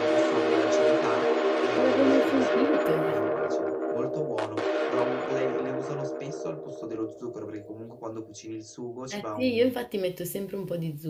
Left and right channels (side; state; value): both; identical; correlation 1.00